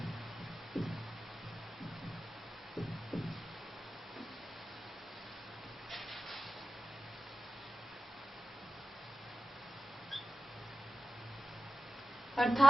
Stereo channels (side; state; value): both; normal; correlation 0.93